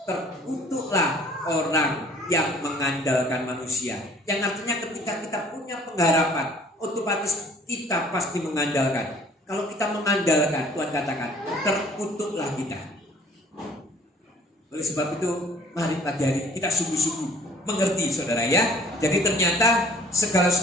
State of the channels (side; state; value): both; normal; correlation 0.54